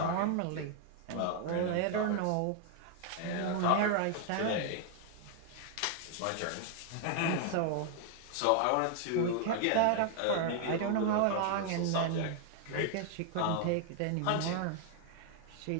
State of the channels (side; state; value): both; different; correlation 0.00